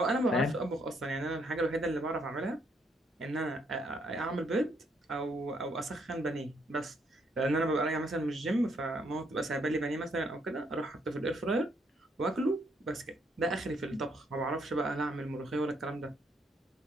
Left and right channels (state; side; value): normal; both; correlation 0.72